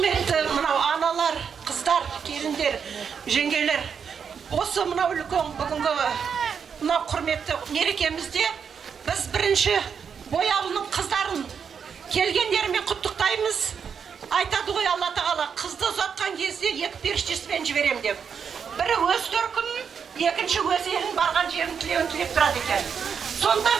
мынау аналар, қыздар, келіндер, жеңгелер, осы мынау үлкен бүгінгі мынау құрметті мерекемізде біз бірінші Бояулының қыздарын келгендерімен құттықтаймыз. Айтады ғой Алла тағала, қызды ұзатқан кезде екі періштесімен жіберем деп. Бірі өз төркінін, екінші өз елін барған жерін тілеуін тілеп тұрады екен. Сондықтан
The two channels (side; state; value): left; quieter; 6.8 dB